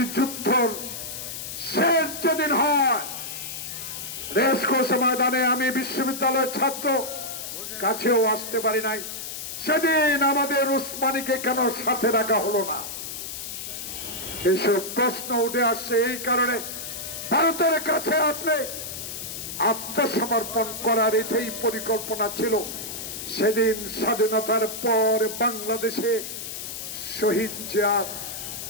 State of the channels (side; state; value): left; noise; hiss, 8 dB below the sound